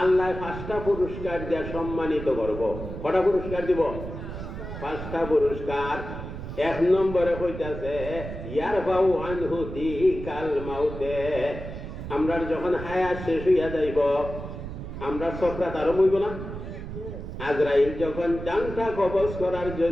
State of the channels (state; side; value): noise; right; rumble, 9 dB below the sound